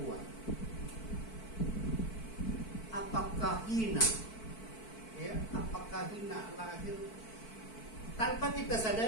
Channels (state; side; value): late; right; 4.5 ms